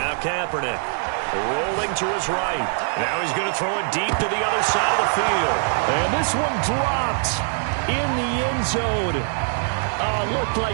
Kaepernick rolling to his right. Now he's going to throw it deep to the other side of the field. And this one dropped in the end zone. Looked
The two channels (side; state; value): left; silent; 58 dB below the other